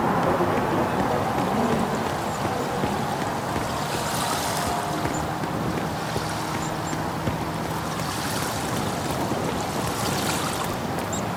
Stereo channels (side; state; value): both; identical; correlation 1.00